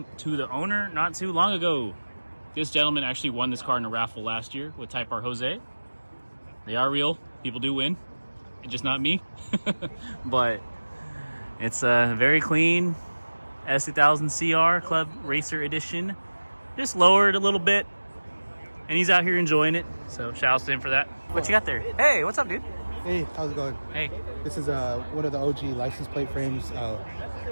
to the owner not too long ago. This gentleman actually won this car in a raffle last year with Type R Jose. They are real. People do win. It's just not me. But it's a very clean S2000 CR Club Racer Edition. Just lowered a little bit. And he's out here enjoying it. So shout out to him for that. What you got there? Hey, what's up, dude? Hey, how's it going? Hey. This is one of the OG license plate frames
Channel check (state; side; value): inverted; both; correlation -1.00